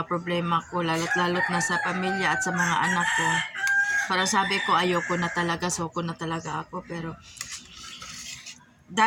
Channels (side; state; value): both; identical; correlation 1.00